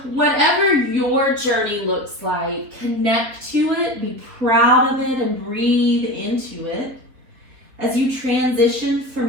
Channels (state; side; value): late; left; 3.7 ms